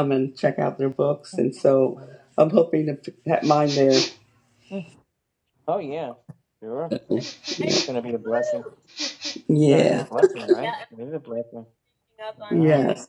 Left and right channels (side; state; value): both; identical; correlation 1.00